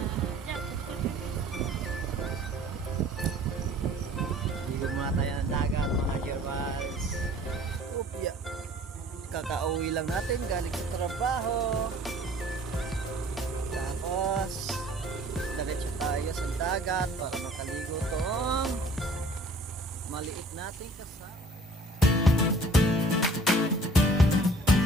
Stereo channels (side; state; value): both; normal; correlation 0.52